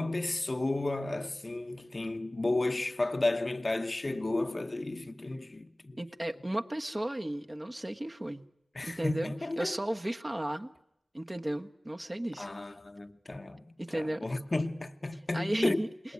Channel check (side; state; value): both; normal; correlation 0.98